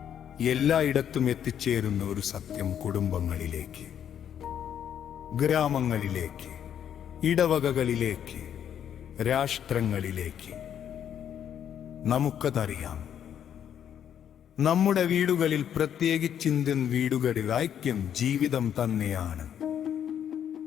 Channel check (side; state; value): right; quieter; 9.3 dB